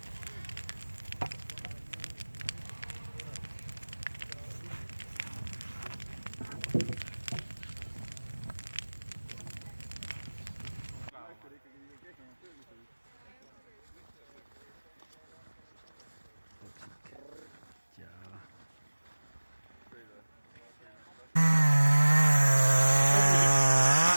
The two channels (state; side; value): inverted; both; correlation -1.00